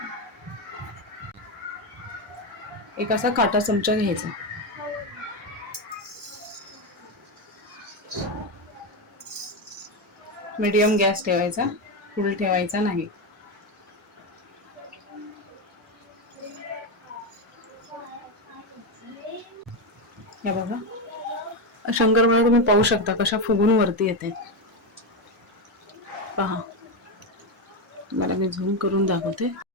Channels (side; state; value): both; normal; correlation 0.11